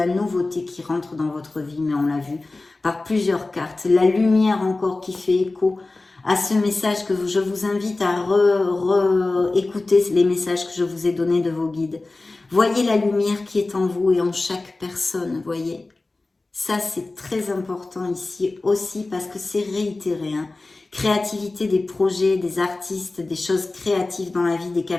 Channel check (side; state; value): right; quieter; 3.2 dB